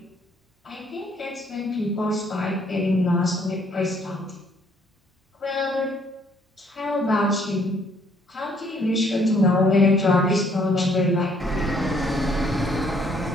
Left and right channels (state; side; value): normal; both; correlation 0.65